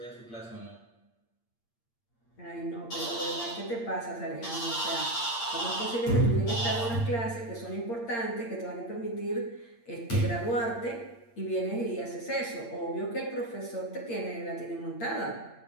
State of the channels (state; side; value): late; right; 8.6 ms